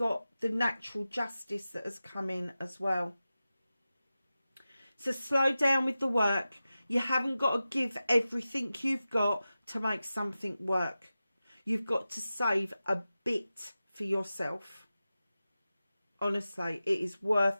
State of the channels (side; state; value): both; inverted; correlation -0.94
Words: the natural justice that has come in as well. So slow down with the work. You haven't got to give everything you've got to make something work. You've got to save a bit for yourself. Honestly, it is worth